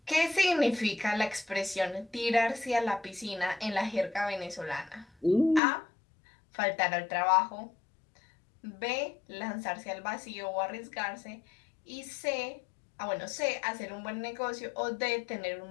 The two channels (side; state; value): right; drops out; at 5.6 s